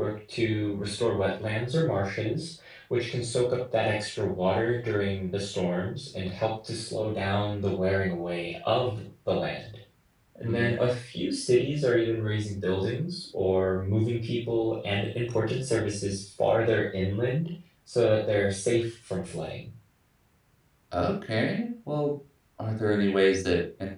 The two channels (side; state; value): both; identical; correlation 1.00